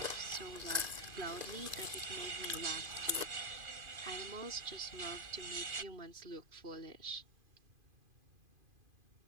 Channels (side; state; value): left; late; 2.5 ms